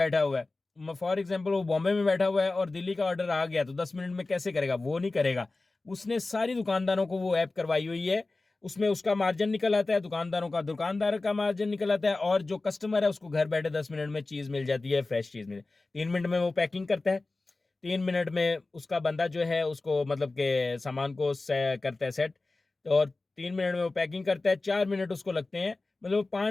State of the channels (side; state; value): right; quieter; 3.3 dB